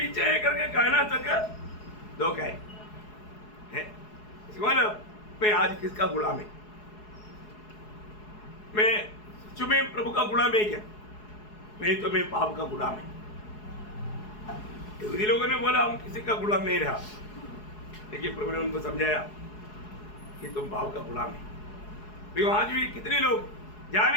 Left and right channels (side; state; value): right; late; 4.7 ms